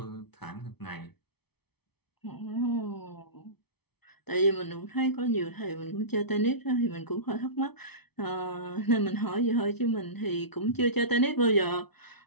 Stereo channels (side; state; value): right; late; 0.98 ms